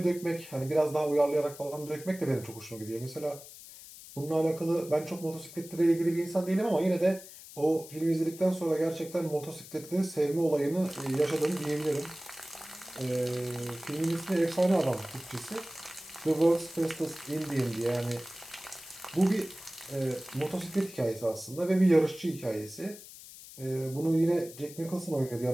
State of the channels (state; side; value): noise; left; hiss, 16 dB below the sound